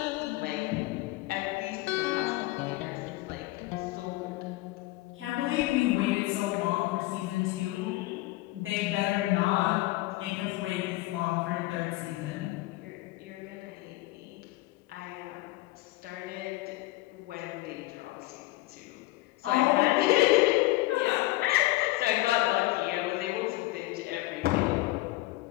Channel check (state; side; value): quieter; right; 18.9 dB